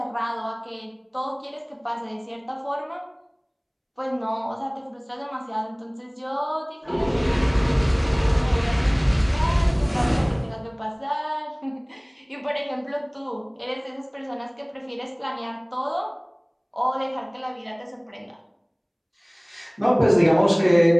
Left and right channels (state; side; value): identical; both; correlation 1.00